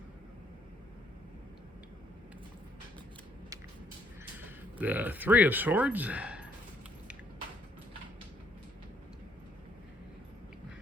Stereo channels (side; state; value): both; normal; correlation 0.68